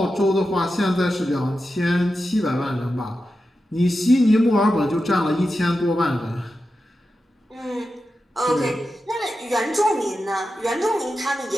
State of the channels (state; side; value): normal; both; correlation 0.91